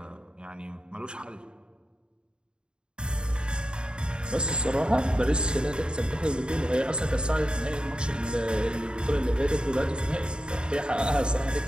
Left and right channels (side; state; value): left; late; 0.050 ms